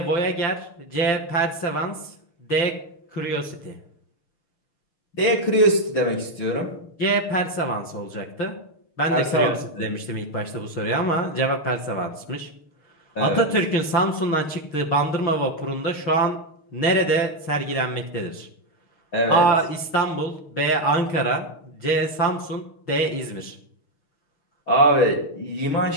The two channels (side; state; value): right; late; 6.5 ms